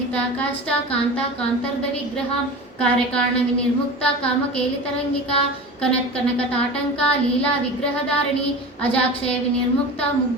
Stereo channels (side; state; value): both; normal; correlation 0.32